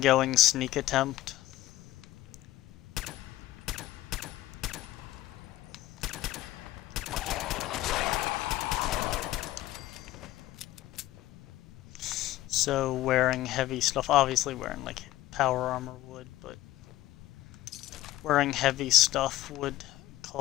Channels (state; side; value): quieter; right; 15.7 dB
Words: sneak attempt. So wearing heavy stuff, obviously wearing like power armor would, but wearing heavy stuff would